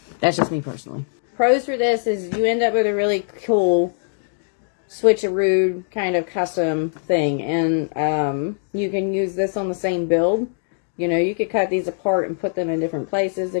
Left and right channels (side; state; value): right; silent; digital silence